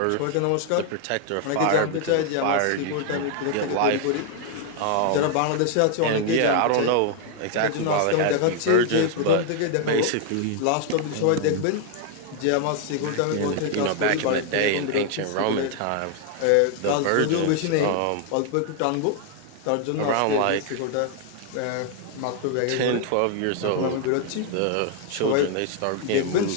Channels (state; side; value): different; both; correlation 0.00